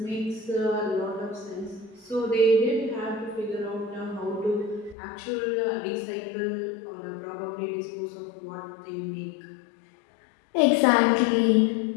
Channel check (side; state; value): right; drops out; at 5.0 s